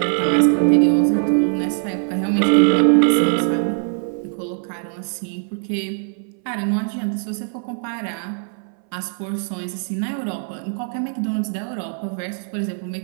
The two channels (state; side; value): silent; left; 63 dB below the other